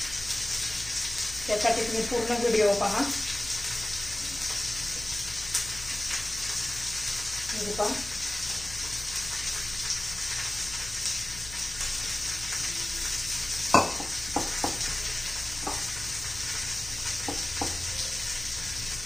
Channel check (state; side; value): noise; left; hum, 14 dB below the sound